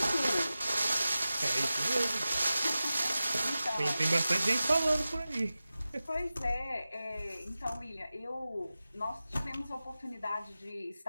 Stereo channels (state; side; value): inverted; both; correlation -0.95